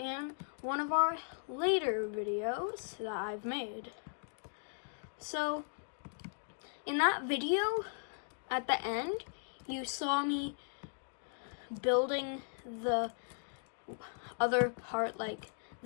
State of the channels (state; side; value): silent; right; digital silence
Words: one of our later videos that I've made. So, in that video, at the end, you saw me building the other part like